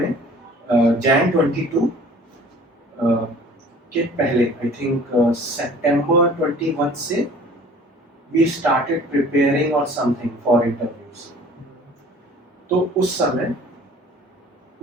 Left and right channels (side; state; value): both; normal; correlation 0.49